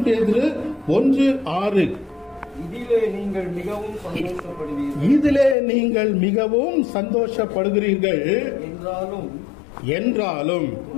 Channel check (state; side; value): drops out; right; at 5.6 s